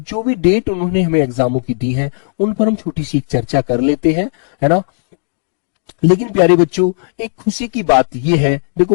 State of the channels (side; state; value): right; silent; digital silence